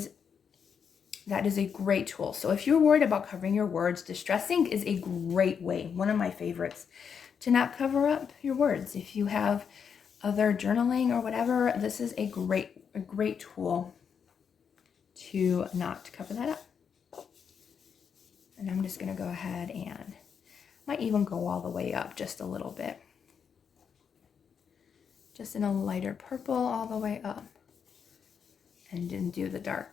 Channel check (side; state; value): right; quieter; 6.9 dB